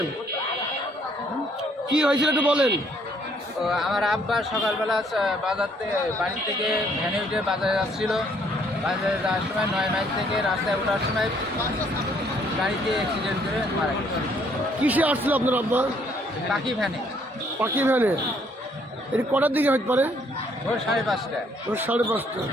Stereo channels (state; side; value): normal; both; correlation 0.65